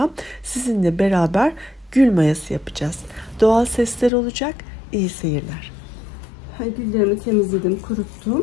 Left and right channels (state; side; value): drops out; right; at 4.1 s